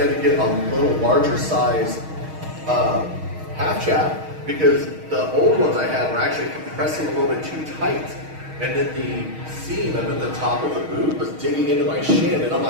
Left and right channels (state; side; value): late; left; 6.4 ms